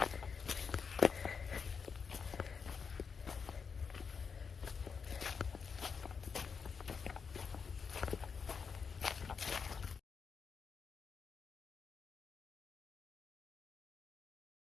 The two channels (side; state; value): right; quieter; 5.8 dB